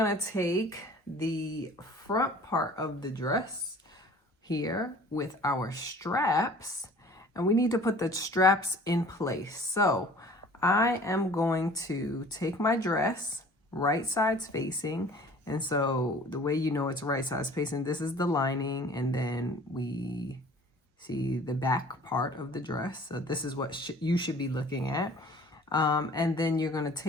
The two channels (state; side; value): normal; both; correlation 0.48